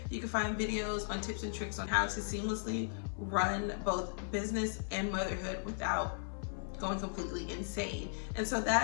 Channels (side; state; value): right; silent; 53 dB below the other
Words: you can find videos on tips and tricks on how to seamlessly run both business and motherhood without going completely insane. And so